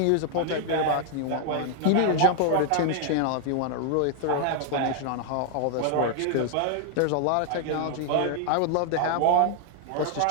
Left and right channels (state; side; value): different; both; correlation 0.00